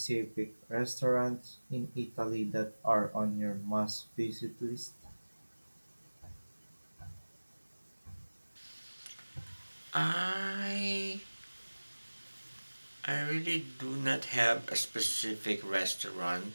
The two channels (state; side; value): inverted; both; correlation -1.00